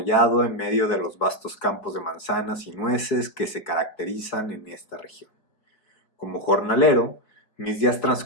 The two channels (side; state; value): right; late; 5.0 ms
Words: en medio de los vastos campos de manzanas y nueces que se caracterizan en esta región. Como jornalero, mis días